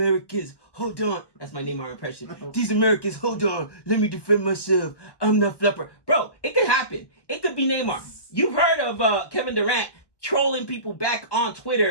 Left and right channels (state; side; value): late; right; 1.1 ms